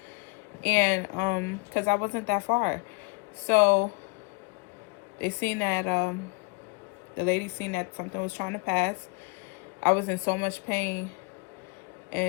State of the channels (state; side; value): quieter; right; 32.2 dB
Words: And because I wasn't that far, so they seen that the lady seen that something was trying to pass. I was in so much pain,